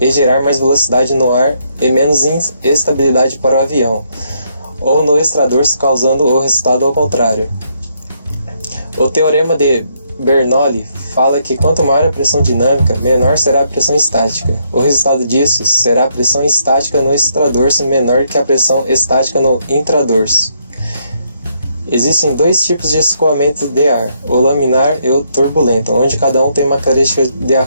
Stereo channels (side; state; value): both; inverted; correlation -0.74